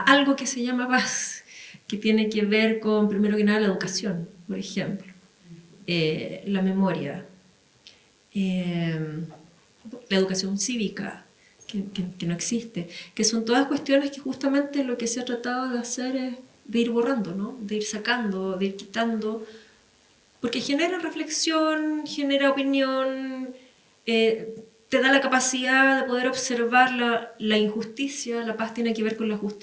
que se llama paz, que tiene que ver con, primero que nada, la educación, por ejemplo, la memoria, la educación cívica, que no existe, que son todas cuestiones que justamente lo que se ha tratado de hacer es de ir borrando, ¿no? De ir sacando, de ir quitando, porque genera reflexión, genera opinión, te da la capacidad de poder observar la injusticia. La paz tiene que ver con la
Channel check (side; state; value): both; identical; correlation 1.00